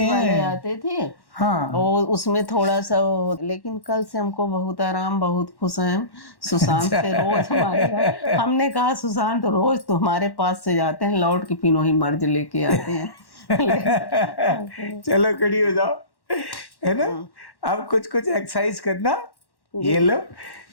वाले आते थे, हाँ, और उसमें थोड़ा सा लेकिन कल से हमको बहुत आराम, बहुत खुश हैं। सुशांत से रोज हमारे, हमने कहा सुशांत रोज तो हमारे पास से जाते हैं, लौट के पिनोही मर्ज लेके आते हैं। चलो खड़ी हो जाओ, है ना। अब कुछ एक्सरसाइज करना। ये लो,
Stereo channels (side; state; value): right; late; 1.1 ms